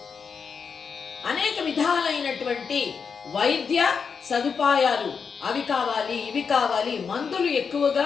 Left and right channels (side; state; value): right; quieter; 5.9 dB